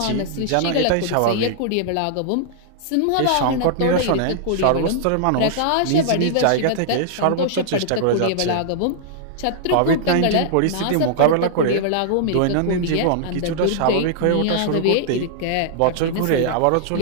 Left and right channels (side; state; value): both; different; correlation -0.01